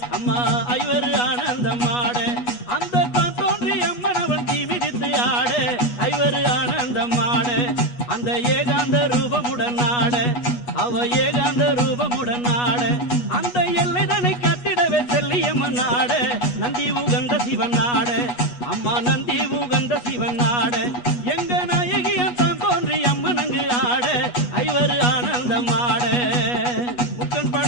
அம்மா ஐவர் ஆனந்தமாட அந்த தான் தோன்றி அம்மன் அவன் தீ மிதித்து ஆட ஐவர் ஆனந்தமாட அந்த ஏகாந்த ரூபமுடன் ஆட அவ ஏகாந்த ரூபமுடன் ஆட அந்த எல்லைதனை கட்டிடவே செல்லியம்மன் ஆட நந்தி உகந்த சிவன் ஆட அம்மா நந்தி உகந்த சிவன் ஆட எங்க நாயகியன் தான் தோன்றி அம்மன் அங்கு ஆட ஐவர் ஆனந்தம் ஆட முக்கன்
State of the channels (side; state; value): right; late; 8.2 ms